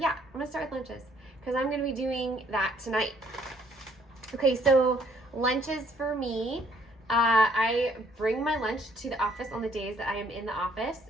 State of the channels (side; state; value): both; normal; correlation 0.64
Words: start with lunches because I'm gonna be doing that tonight. Okay, so lunches for me, I bring my lunch to the office on the days that I am in the office,